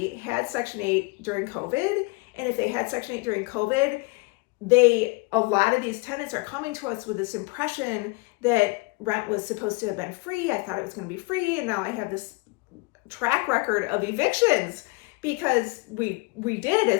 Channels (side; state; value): right; quieter; 26.5 dB